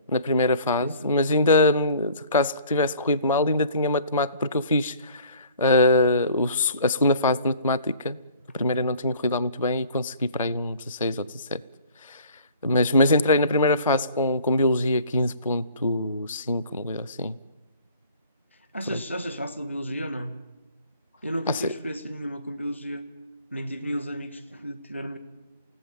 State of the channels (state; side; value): inverted; both; correlation -0.51